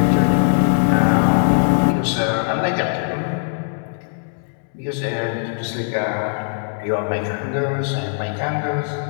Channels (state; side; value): silent; right; digital silence